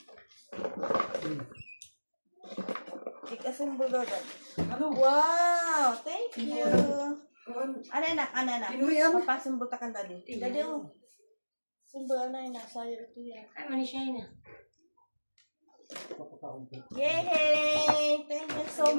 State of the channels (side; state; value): both; inverted; correlation -1.00